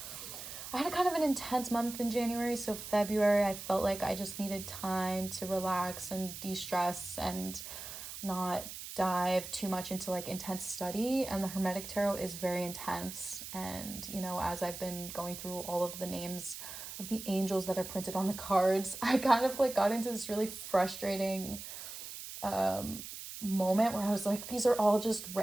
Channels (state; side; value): noise; right; hiss, 10 dB below the sound